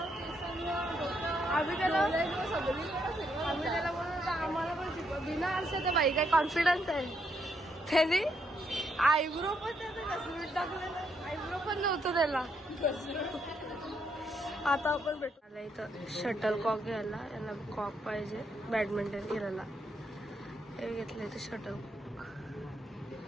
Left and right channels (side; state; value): both; normal; correlation 0.76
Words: त्याला बोलतो आम्हाला पण शिकव. बिना आरशाचं बाई काय कॉन्फिडन्स आहे त्याने. आयब्रो पण त्याचं घसरून टाकलेलं. आयब्रो पण नव्हतं त्याला. आता आपण भेटू. इथं शटल कॉक घ्यायला. यांना कॉक पाहिजे बॅडमिंटन खेळायला. हे घेतलं इथं शटल कॉक.